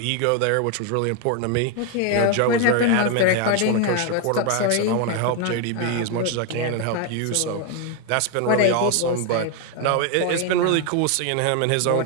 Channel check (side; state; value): both; different; correlation 0.01